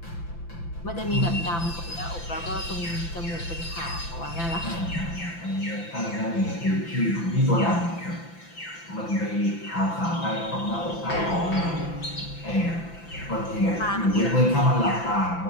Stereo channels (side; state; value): right; late; 5.9 ms